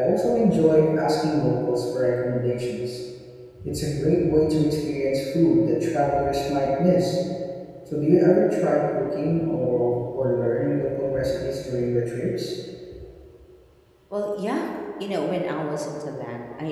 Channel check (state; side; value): identical; both; correlation 1.00